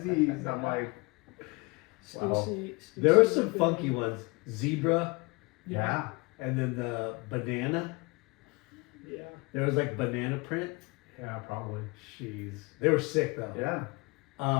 Z's. I'm like, wow. Stussy, There were Stussy some was good. funky ones. Zebra, Yeah. and then the banana. Yeah. There was like banana print. Yeah, probably. Jeez. They were sick though. Yeah.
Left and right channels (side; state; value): right; quieter; 27.6 dB